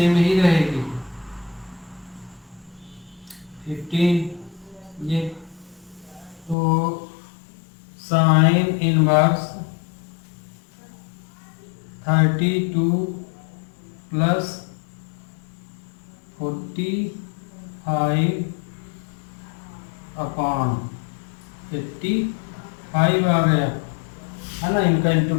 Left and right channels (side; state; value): right; drops out; at 6.6 s